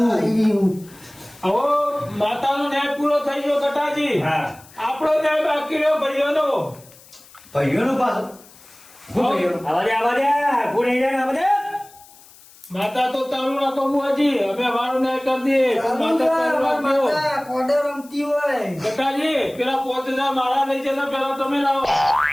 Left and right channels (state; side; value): noise; left; hiss, 24 dB below the sound